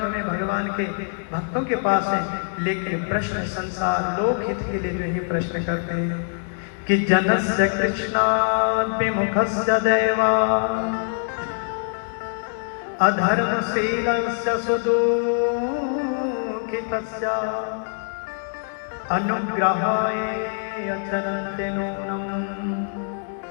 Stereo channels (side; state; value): right; silent; 63 dB below the other